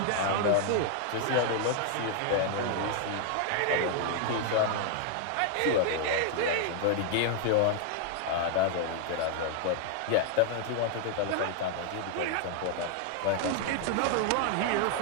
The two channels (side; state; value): both; different; correlation 0.00